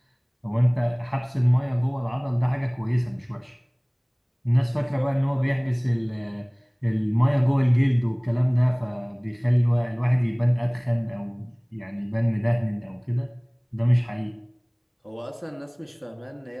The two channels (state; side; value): identical; both; correlation 1.00